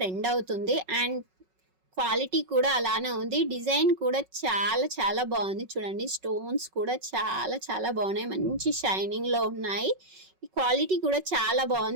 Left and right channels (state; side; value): late; left; 5.4 ms